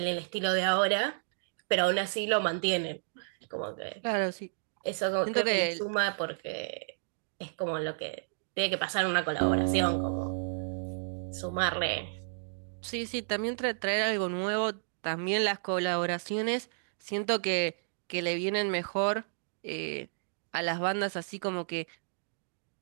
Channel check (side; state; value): left; silent; digital silence